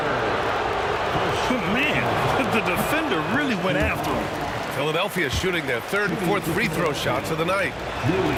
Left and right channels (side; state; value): both; identical; correlation 1.00